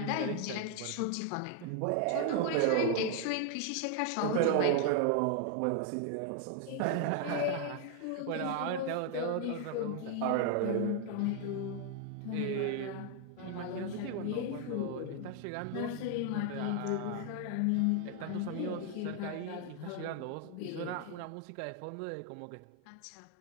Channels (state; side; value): different; both; correlation 0.00